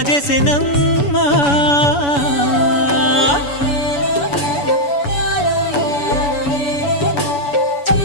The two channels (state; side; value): late; right; 7.0 ms